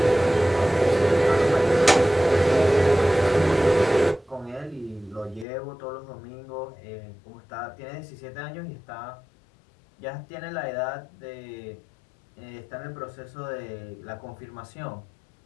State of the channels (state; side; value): drops out; right; at 5.5 s